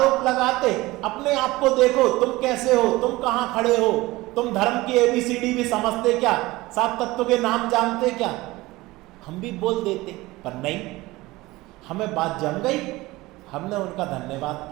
लगाते, अपने आप को देखो, तुम कैसे हो, तुम कहाँ खड़े हो, तुम धर्म की ABCD भी समझते क्या, 7 तत्वों के नाम जानते क्या। हम भी बोल देते, पर नहीं, हमें बात जम गई, हमने उनका धन्यवाद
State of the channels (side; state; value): left; quieter; 19.9 dB